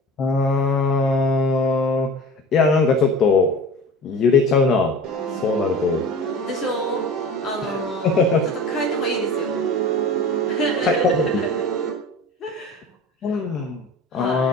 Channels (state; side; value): normal; both; correlation 0.37